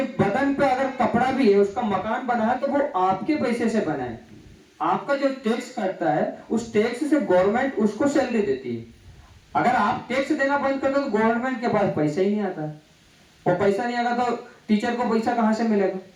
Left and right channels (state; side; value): identical; both; correlation 1.00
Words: बदन पे अगर कपड़ा भी है, उसका मकान बना है तो वो आपके पैसे से बना है। आपका जो टैक्स करता है उस टैक्स से गवर्नमेंट उसको सैलरी देती है। अगर आप टैक्स देना बंद कर दो तो गवर्नमेंट के पास पैसा ही नहीं आता, और पैसा नहीं आएगा तो टीचर को पैसा कहां से मिलेगा?